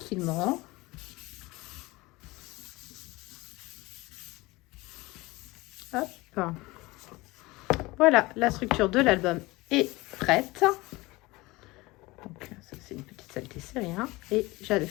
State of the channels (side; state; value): right; quieter; 21.5 dB